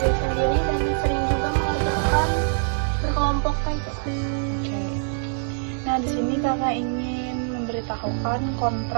dan sering juga mengerjakan berkelompok kayak gitu. Nah, di sini kakak ingin memberitahukan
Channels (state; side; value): silent; left; digital silence